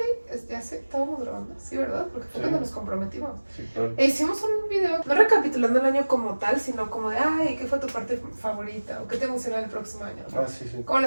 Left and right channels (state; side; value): inverted; both; correlation -1.00